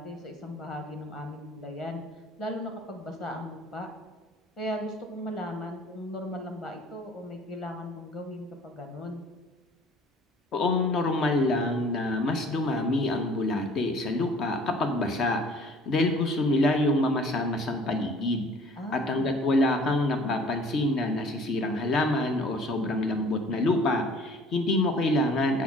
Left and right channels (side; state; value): both; normal; correlation 0.51